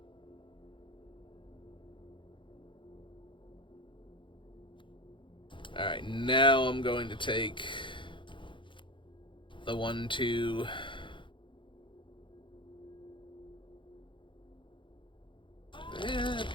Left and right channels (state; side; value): late; right; 0.24 ms